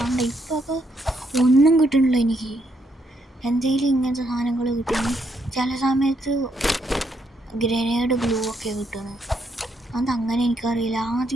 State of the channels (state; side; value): normal; both; correlation 0.75